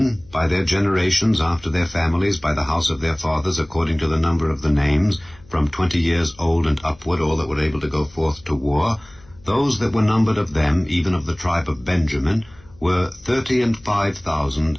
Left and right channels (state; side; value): noise; left; hum, 26 dB below the sound